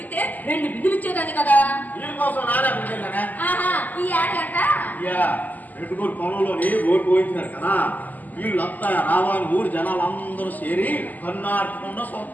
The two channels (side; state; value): right; late; 0.082 ms